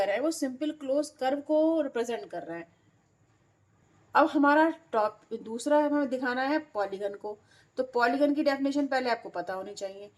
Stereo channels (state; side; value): identical; both; correlation 1.00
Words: है वो सिंपल क्लोज कर्व को रिप्रेजेंट कर रहा है। अब हमारा टॉप दूसरा हमें दिखाना है पॉलीगन को। तो पॉलीगन की डेफिनेशन पहले आपको पता होनी चाहिए।